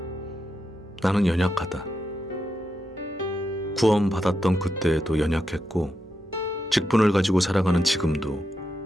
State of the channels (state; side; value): normal; both; correlation 0.85